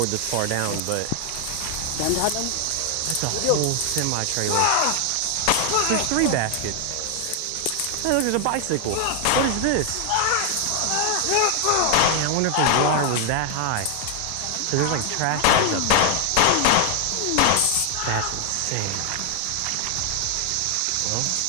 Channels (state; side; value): different; both; correlation 0.00